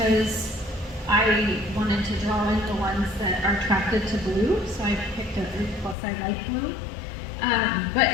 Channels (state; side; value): drops out; right; at 6.0 s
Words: I wanted to draw in the ones that are attracted to blue, so I picked a 3+. I like blue. But